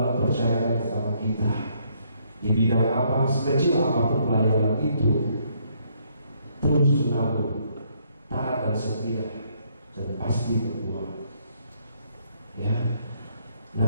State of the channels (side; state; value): both; inverted; correlation -0.69